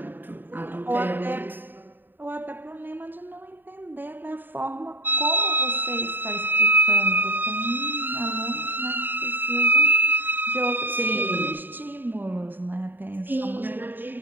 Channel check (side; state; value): left; late; 0.092 ms